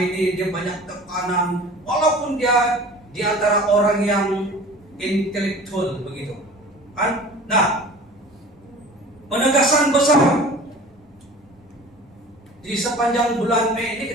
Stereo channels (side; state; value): both; normal; correlation 0.42